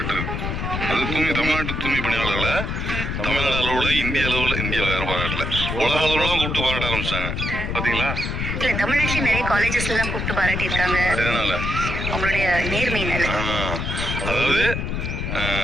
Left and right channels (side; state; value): left; noise; rumble, 2 dB below the sound